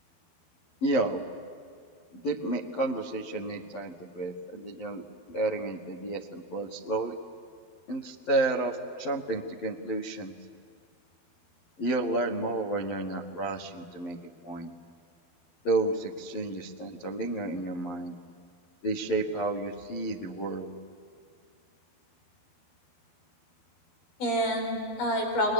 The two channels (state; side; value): late; right; 11 ms